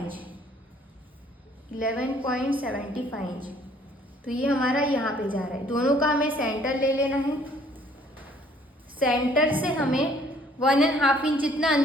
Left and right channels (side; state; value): both; normal; correlation 0.59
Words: 11.75 इंच। तो ये हमारा यहाँ पे जा रहा है। दोनों का हमें सेंटर ले लेना है। सेंटर से हमें 1.5 इंच जितना